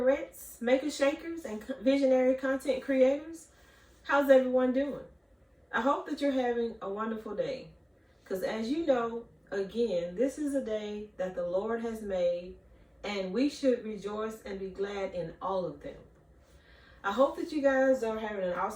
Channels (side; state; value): both; identical; correlation 1.00